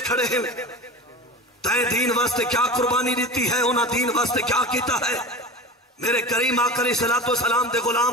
खड़े हैं, तय दीन वास्ते क्या कुर्बानी दी है, उन्हें दीन वास्ते क्या किया है। मेरे करीम आका अलैहिस्सलातु वस्सलाम दे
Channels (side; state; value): both; normal; correlation 0.31